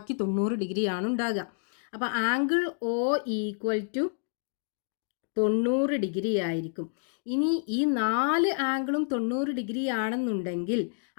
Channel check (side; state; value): right; silent; digital silence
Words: 90 ഡിഗ്രിയാണ് ഉണ്ടാകുക. അപ്പോൾ angle O equal to 90 degree ആയിരിക്കും. ഇനി ഈ 4 ആംഗിളും 90 ഡിഗ്രി ആണെന്നുണ്ടെങ്കിൽ